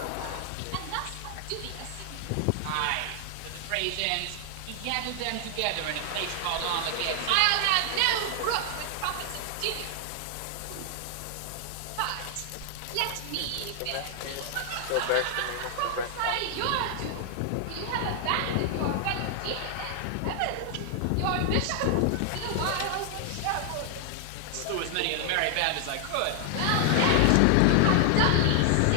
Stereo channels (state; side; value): different; both; correlation 0.00